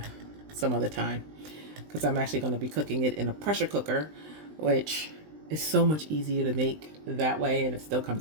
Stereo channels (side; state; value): left; late; 20 ms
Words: some other time because I'm actually going to be cooking it in a pressure cooker, which is so much easier to make that way, and it still